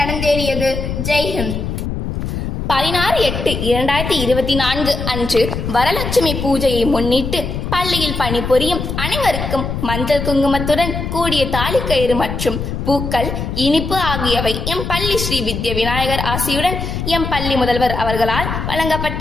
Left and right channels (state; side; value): noise; left; rumble, 4 dB below the sound